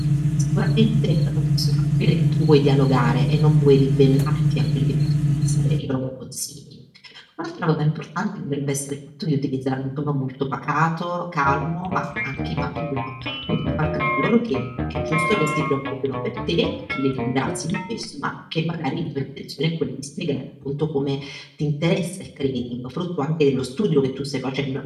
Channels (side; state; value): both; identical; correlation 1.00